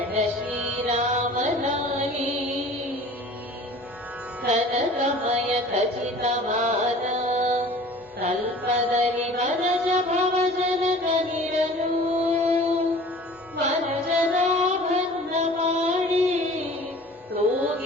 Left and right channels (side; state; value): both; normal; correlation 0.45